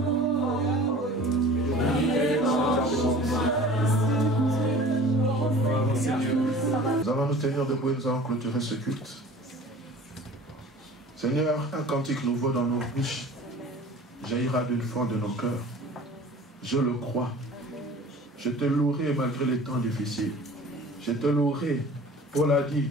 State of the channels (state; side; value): normal; both; correlation 0.43